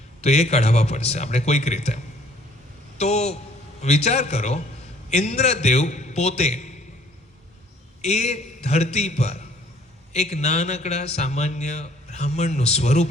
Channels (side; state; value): both; normal; correlation 0.58